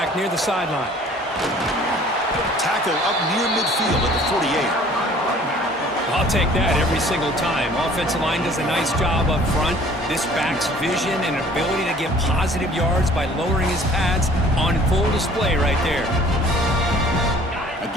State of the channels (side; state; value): both; normal; correlation 0.52